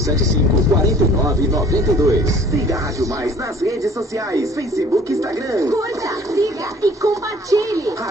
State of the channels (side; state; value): both; normal; correlation 0.52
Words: 4992. Siga a Rádio Mais nas redes sociais. Facebook, Instagram. Curta, siga e compartilhe.